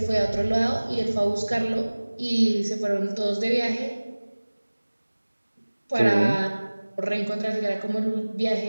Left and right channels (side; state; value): both; inverted; correlation -1.00